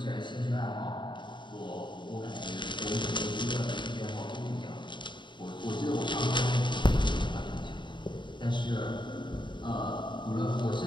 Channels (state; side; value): late; right; 0.23 ms